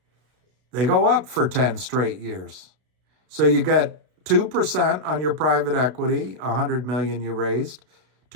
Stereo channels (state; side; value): late; left; 32 ms